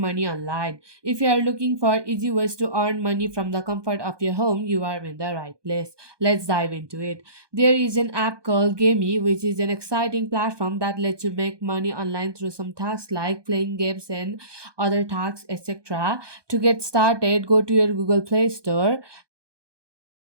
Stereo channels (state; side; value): late; left; 1.2 ms